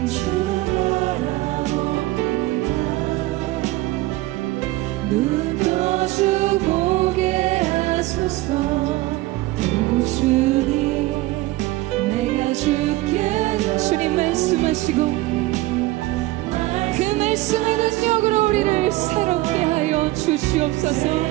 눈 떠주 보게 하소서. 오 주님, 내가 주께 주님 말씀하시고 그 말씀을 능력으로 우리를 새롭게 하여 주시옵소서.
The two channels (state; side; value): quieter; left; 18.7 dB